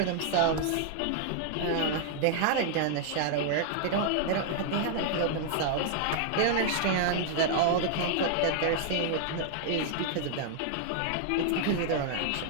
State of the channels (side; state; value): both; different; correlation -0.01